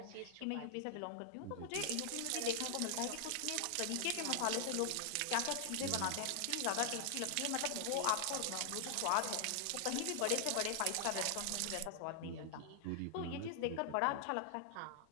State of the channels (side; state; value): both; different; correlation 0.00